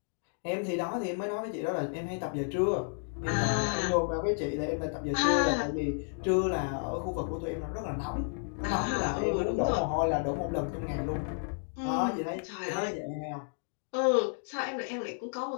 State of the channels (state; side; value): silent; right; 57 dB below the other